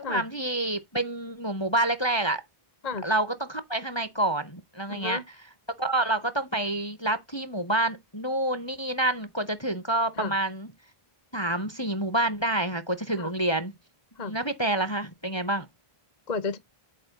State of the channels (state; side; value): late; right; 1.3 ms